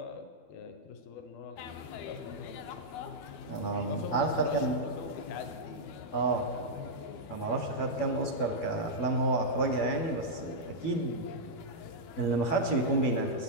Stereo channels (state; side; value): late; right; 12 ms